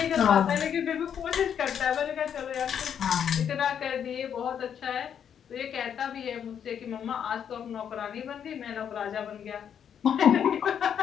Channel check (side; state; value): right; quieter; 8.4 dB